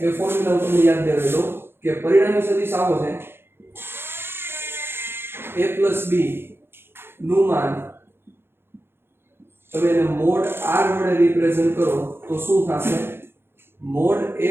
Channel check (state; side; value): late; left; 0.11 ms